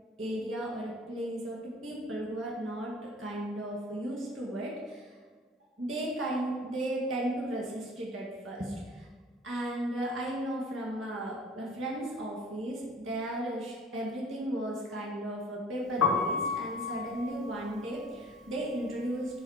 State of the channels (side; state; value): both; normal; correlation 0.48